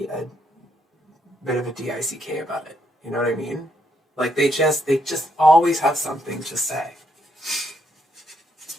a bit of a DICK about it. You know what I mean? Like they just always have something to say.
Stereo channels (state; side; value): normal; both; correlation 0.75